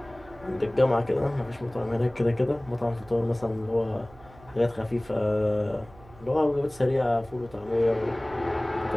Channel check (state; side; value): noise; right; hum, 23 dB below the sound